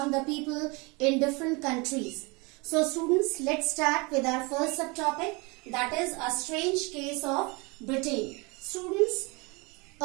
the people in different countries. So students, let's start with our first subtopic, that is a strange case of Britain. Students,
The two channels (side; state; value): left; quieter; 27.9 dB